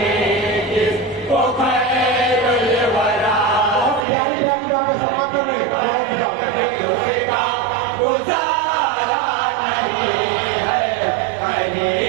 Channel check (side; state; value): left; drops out; at 4.0 s